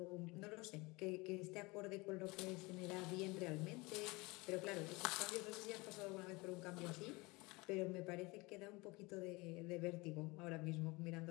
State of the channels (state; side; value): quieter; right; 24.3 dB